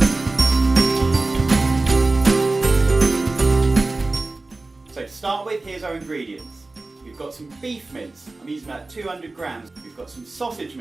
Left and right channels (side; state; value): left; quieter; 3.3 dB